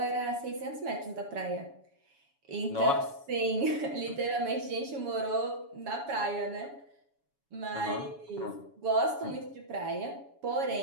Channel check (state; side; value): late; left; 7.1 ms